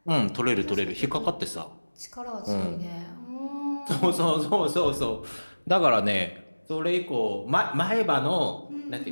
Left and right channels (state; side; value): inverted; both; correlation -1.00